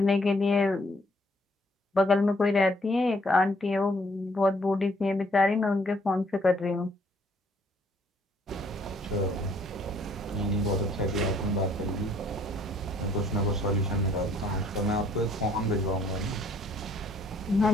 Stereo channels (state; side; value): normal; both; correlation 0.64